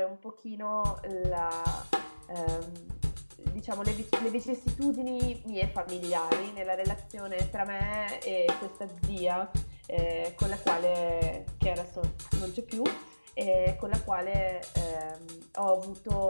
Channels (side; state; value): both; inverted; correlation -1.00